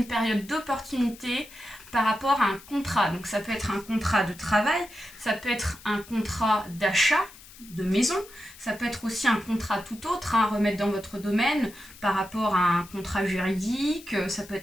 période d'opportunité par rapport à un contrat. Donc ça peut être un contrat de travail, ça peut être un contrat d'achat de maison, ça peut être aussi un contrat tout autre à remettre dans votre domaine par rapport à un contrat juridique, ça peut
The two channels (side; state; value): left; noise; hiss, 20 dB below the sound